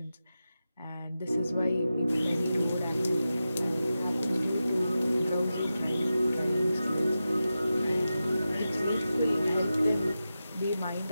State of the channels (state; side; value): inverted; both; correlation -0.92